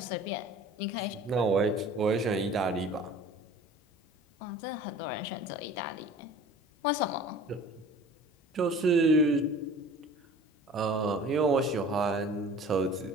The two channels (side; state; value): both; normal; correlation 0.44